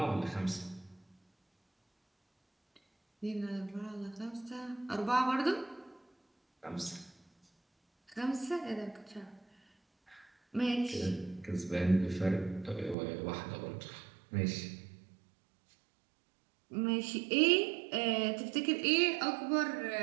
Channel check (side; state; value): left; drops out; at 13.0 s